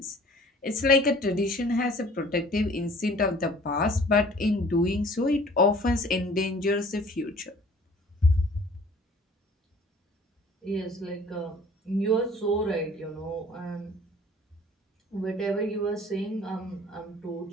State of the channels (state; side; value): normal; both; correlation 0.51